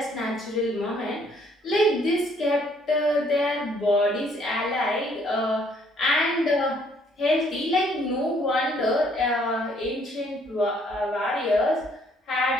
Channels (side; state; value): both; normal; correlation 0.65